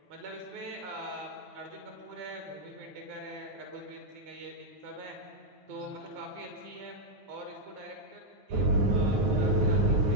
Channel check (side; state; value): left; late; 9.6 ms